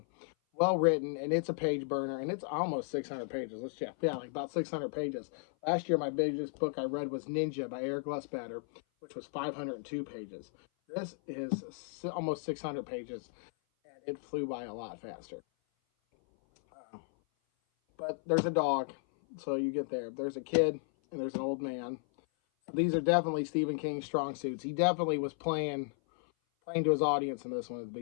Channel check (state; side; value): silent; right; 55 dB below the other